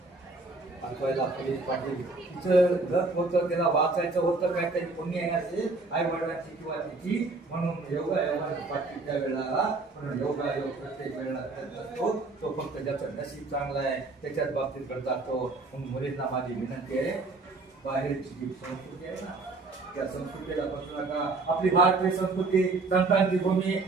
वाचवायला पोलीस पाटील तिचं लत होतं, त्याला वाचायचं होतं, काहीतरी पुण्य येण्याचे आई वडिलांची किंवा तिची. म्हणून योगा पाटील त्या वेळेला योगा योग प्रत्येक वेळेला असतो. तो फक्त ज्याचं नशीब चांगलं आहे त्याच्याच बाबतीत करतात तो. म्हणून मुलींना माझी विनंती आहे, बाहेरची जी संस्कृती आहे ना त्या संस्कृतीला बसू नका. आपली भारतीय संस्कृती संतांची भूमी.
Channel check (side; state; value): left; quieter; 3.6 dB